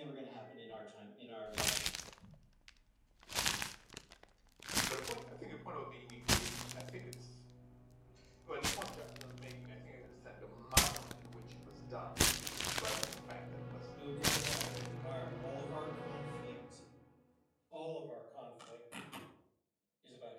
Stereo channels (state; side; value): identical; both; correlation 1.00